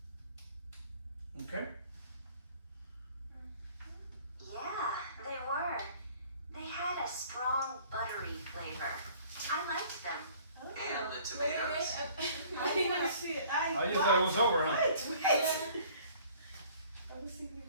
Okay? Yeah, they were. They had a strong buttery flavor. I liked them. And the tomatoes? I didn't see it. Oh, you thought it was over, huh? Wait. I was thinking.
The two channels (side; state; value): both; inverted; correlation -0.54